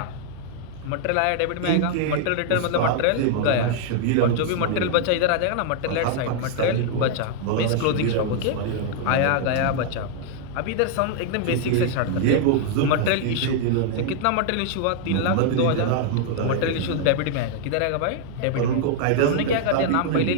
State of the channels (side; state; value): both; different; correlation -0.01